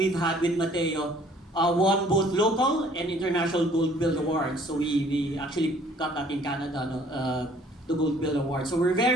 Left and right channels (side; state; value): both; normal; correlation 0.57